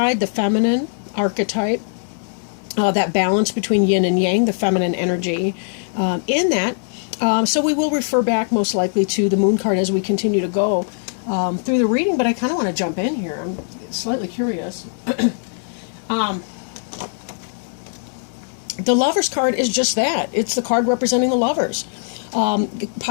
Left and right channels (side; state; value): right; silent; digital silence